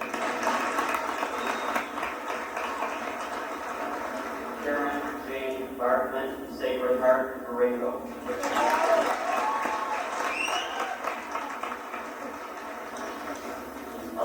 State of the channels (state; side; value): identical; both; correlation 1.00